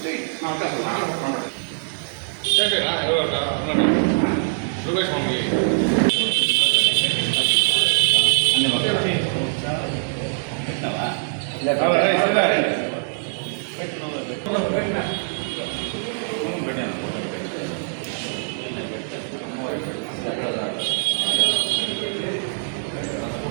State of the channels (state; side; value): silent; left; 64 dB below the other